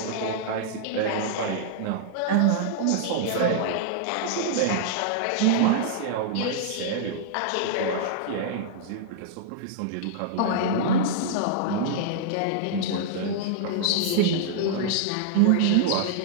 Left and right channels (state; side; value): different; both; correlation -0.01